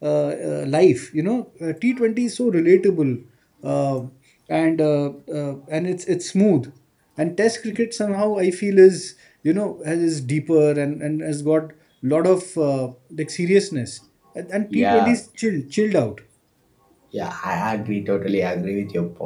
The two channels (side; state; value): both; identical; correlation 1.00